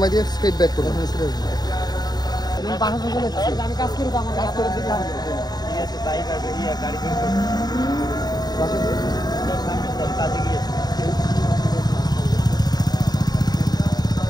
দিয়ে স্ট্রেট ব্যাক করবেন। আমি কাজ করি, আমার কাজ করে দিতে হবে। ঠিক আছে, তাই করবে। গাড়ি বের করবে, বাসা কাজে গিয়েছে।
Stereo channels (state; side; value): late; right; 0.20 ms